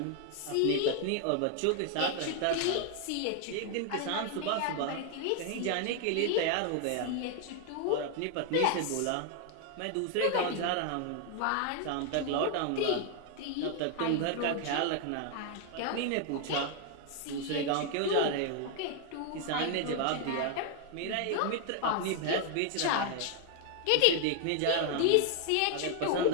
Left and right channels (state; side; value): different; both; correlation 0.00